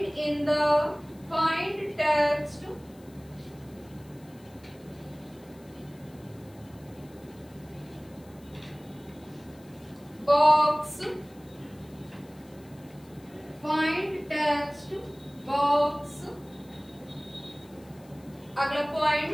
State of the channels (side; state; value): left; noise; hiss, 27 dB below the sound